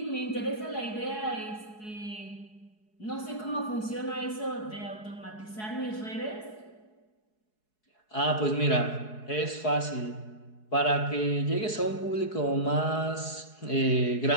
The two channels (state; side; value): late; right; 4.7 ms